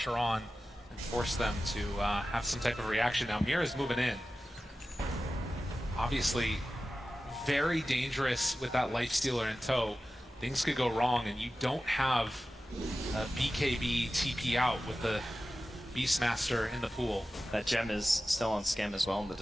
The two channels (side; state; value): both; normal; correlation 0.94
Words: on and force them to have some type of reaction? Now Mira's moving in. Obviously, very dangerous with that Life Stealer in tow. Things could go wrong, and you don't have a BKB TP out with the Beastmaster in the pool. That gem is still on Skem as well in the